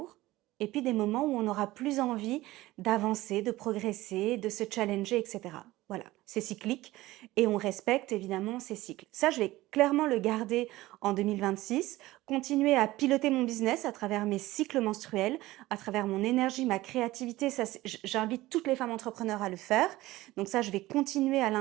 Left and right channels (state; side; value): quieter; left; 17.7 dB